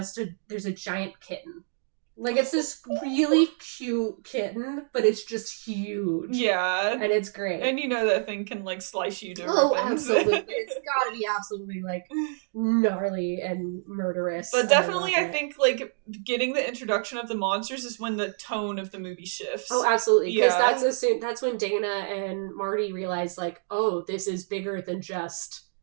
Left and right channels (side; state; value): left; silent; digital silence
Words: there's a giant kitten. Like, it's this really cute kitten, but it's just huge. Yeah. And it's great. And you know that thing can, like, slice you to ribbons. Oh, absolutely. It's gotta be absolutely, like, gnarly and murderous. But definitely, I think, like, getting the introduction of the monsters is when the tone of the movie shifts. Oh, absolutely. Because that's when Dana and Marty realize, like, oh, this is bigger than just,